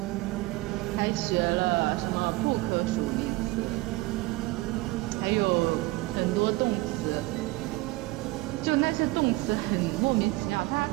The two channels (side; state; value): left; quieter; 20.7 dB